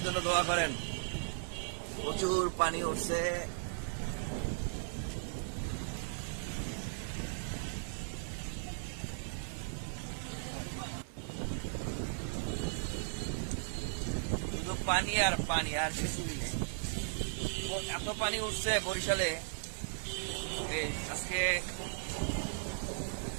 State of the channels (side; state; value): left; silent; digital silence